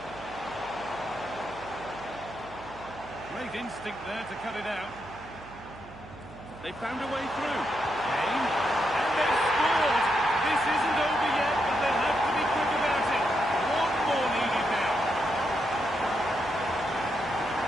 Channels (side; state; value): right; noise; hum, 18 dB below the sound